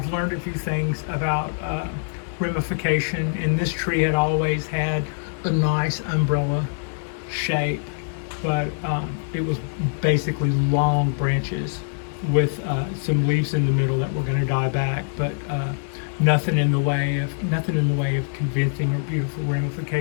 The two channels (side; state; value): right; silent; digital silence